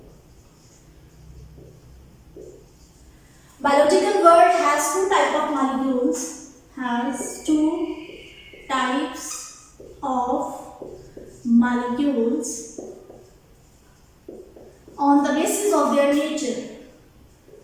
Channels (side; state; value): both; identical; correlation 1.00